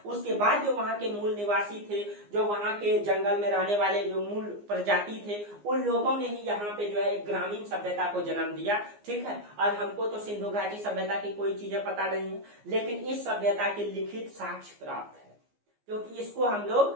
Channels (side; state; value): left; late; 15 ms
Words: उसके बाद जो वहां के मूल निवासी थे, जो वहां के जंगल में रहने वाले जो मूल प्रजाति थे, उन लोगों ने ही यहाँ पे जो है एक ग्रामीण सभ्यता को जन्म दिया, ठीक है। और हमको तो सिंधु घाटी सभ्यता की कोई चीजें पता नहीं है, लेकिन इस सभ्यता के लिखित साक्ष्य प्राप्त है, क्योंकि इसको हम